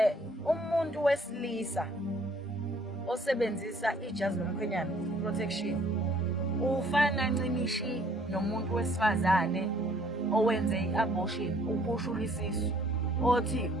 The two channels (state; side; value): normal; both; correlation 0.61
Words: Umuntu wesilisa osebenzisa ijazi lomkhwenyana, protection, ufana ncimishi nomuntu wesifazane owenze i-abortion, ukhushula isisu, othi